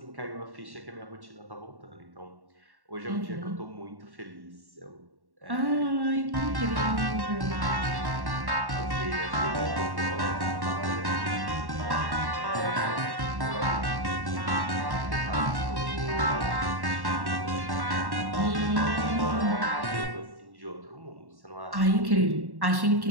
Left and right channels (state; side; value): late; left; 1.1 ms